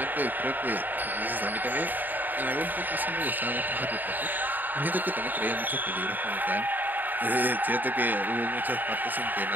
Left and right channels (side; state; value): left; late; 0.088 ms